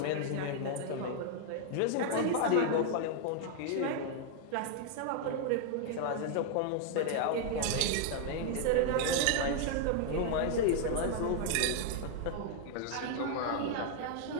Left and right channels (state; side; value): different; both; correlation 0.00